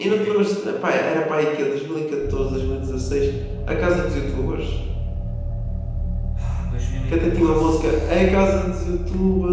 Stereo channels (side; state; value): both; identical; correlation 1.00